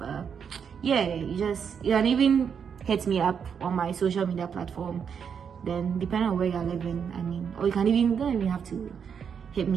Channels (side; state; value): left; quieter; 7.1 dB